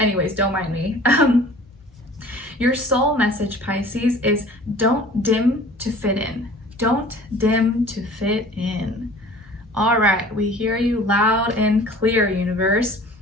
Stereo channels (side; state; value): both; normal; correlation 0.47